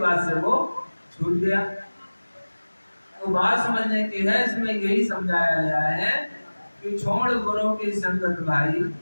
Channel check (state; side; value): inverted; both; correlation -1.00